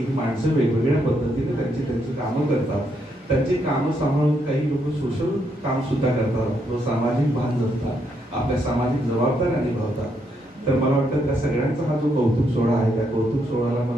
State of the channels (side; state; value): both; normal; correlation 0.77